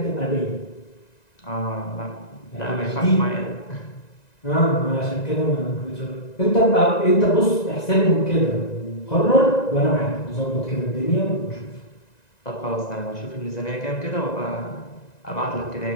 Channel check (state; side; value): late; right; 1.9 ms